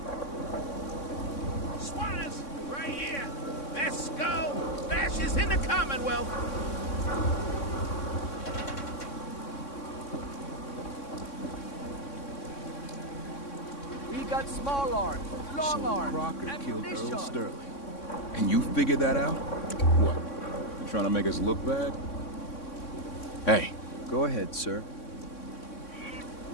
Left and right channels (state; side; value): late; right; 3.6 ms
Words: Squatters, right here. Let's go. Bash is in the Commonwealth. We got small arms, long arms, Crocker killed ammunition. Earl Sterling. And you figured that out? What? You trying to make us look bad? Hey. Go ahead, sir.